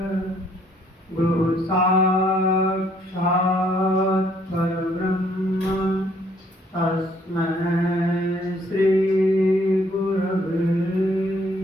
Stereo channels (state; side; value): normal; both; correlation 0.65